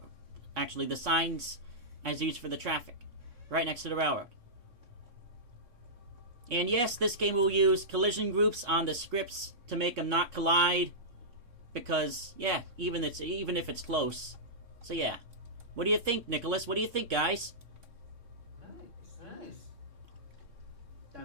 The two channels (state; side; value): late; left; 3.6 ms